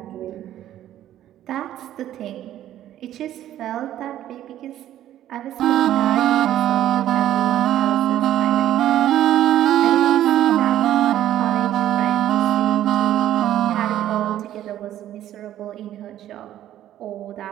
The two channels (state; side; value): quieter; left; 12.3 dB